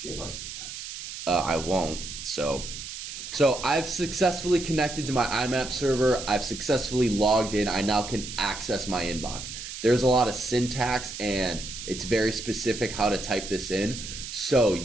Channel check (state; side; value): noise; right; hiss, 9 dB below the sound